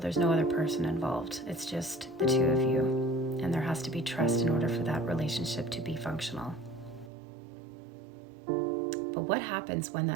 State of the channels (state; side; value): drops out; left; at 7.1 s